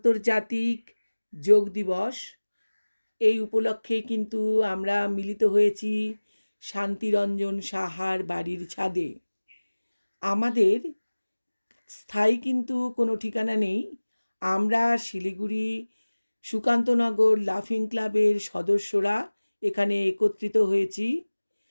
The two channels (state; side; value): inverted; both; correlation -1.00